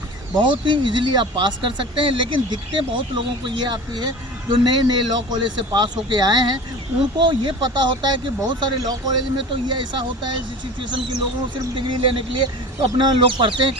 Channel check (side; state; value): both; normal; correlation 0.36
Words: बहुत ही इजीली आप पास कर सकते हैं। लेकिन दिक्कतें बहुत लोगों को ये आती है, जो नए नए लॉ कॉलेज से पास होके आए हैं, उनको ये पता होता है कि बहुत सारे लॉ कॉलेज में तो ये ऐसा होता है सिचुएशन की लोगों को सिर्फ डिग्री लेने के लिए तो अपना लोग पढ़ते हैं,